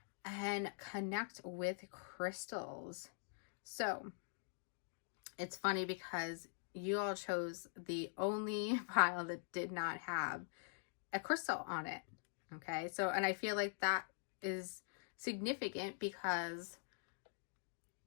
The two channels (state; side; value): silent; right; digital silence